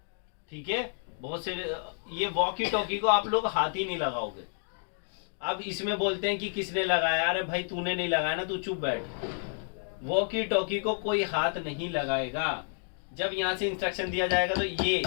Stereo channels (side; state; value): right; silent; digital silence